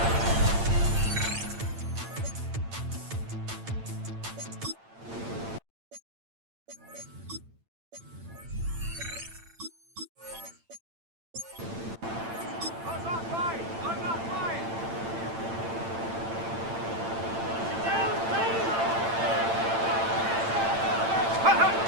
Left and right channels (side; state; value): left; late; 8.9 ms